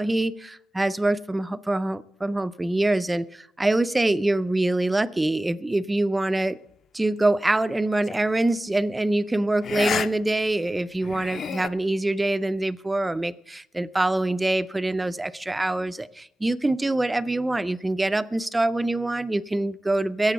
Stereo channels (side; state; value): both; normal; correlation 0.97